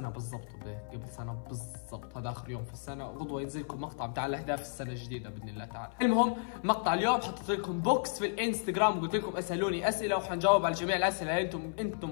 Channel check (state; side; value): silent; right; 55 dB below the other